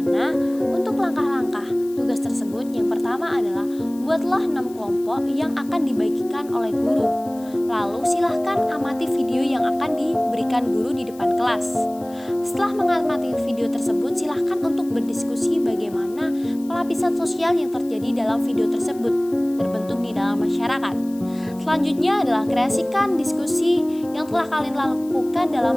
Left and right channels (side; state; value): left; noise; hiss, 23 dB below the sound